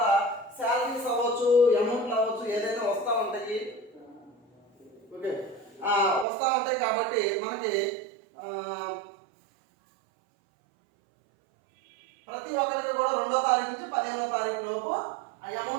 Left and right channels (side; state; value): left; drops out; at 6.2 s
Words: శాలరీస్ అవ్వచ్చు, అమౌంట్లు అవ్వచ్చు, ఏదైనా వస్తూ ఉంటాయి. ఓకే, వస్తూ ఉంటాయి కాబట్టి మనకి ప్రతి ఒక్కరికి కూడా 2వ తారీఖు నుంచి 15వ తారీఖు లోపు ఆ